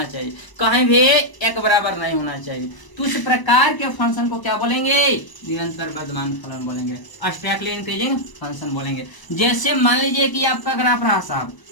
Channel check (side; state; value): right; late; 1.0 ms